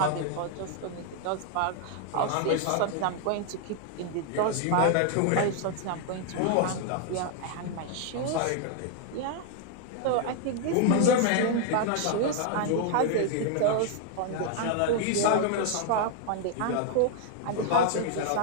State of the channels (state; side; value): different; both; correlation 0.00